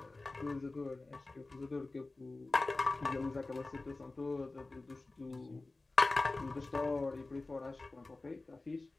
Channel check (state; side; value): quieter; right; 3.2 dB